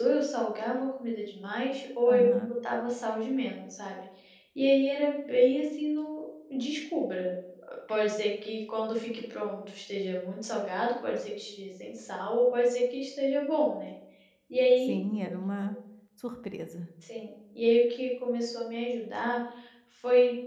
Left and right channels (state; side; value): identical; both; correlation 1.00